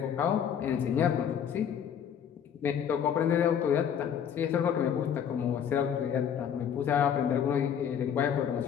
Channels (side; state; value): right; quieter; 8.4 dB